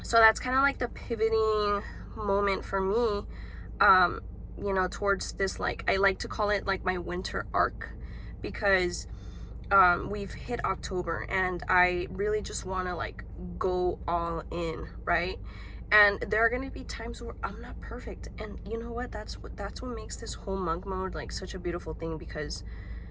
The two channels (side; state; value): both; identical; correlation 1.00